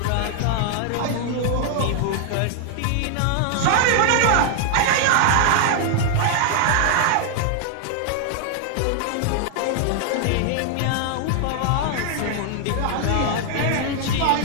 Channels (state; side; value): different; both; correlation 0.00